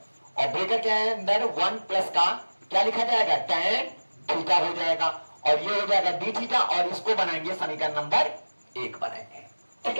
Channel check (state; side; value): inverted; both; correlation -1.00